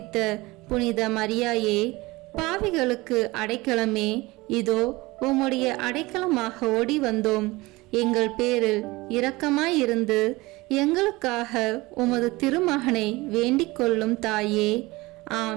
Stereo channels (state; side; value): quieter; left; 21.5 dB